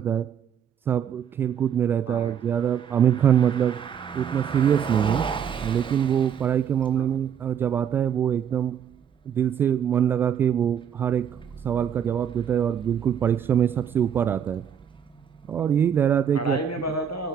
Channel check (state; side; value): quieter; left; 8.4 dB